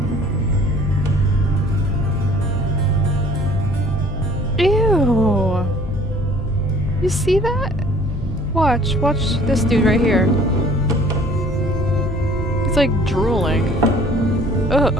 Ew. You see that? Watch this dude right here. He's like drooling. Ugh.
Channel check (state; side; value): normal; both; correlation 0.53